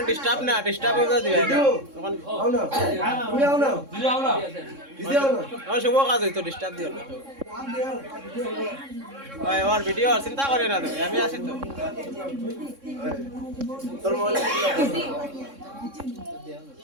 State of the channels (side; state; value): left; late; 3.6 ms